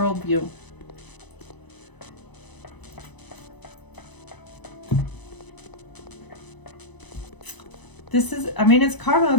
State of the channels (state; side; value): late; right; 1.0 ms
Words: This is, I mean, it's karma.